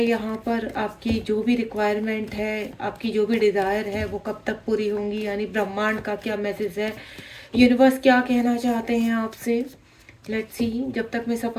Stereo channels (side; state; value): both; identical; correlation 1.00